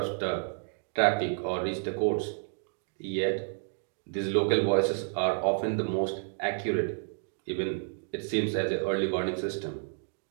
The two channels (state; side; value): silent; left; digital silence